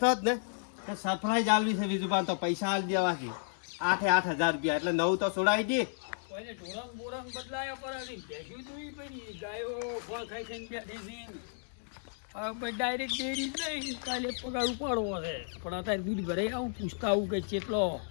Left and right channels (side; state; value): right; silent; digital silence